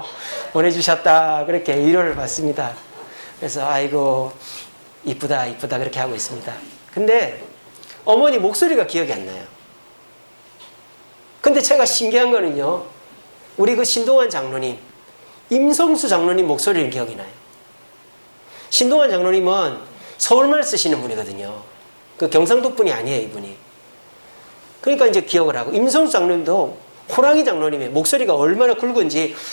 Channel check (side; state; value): both; inverted; correlation -1.00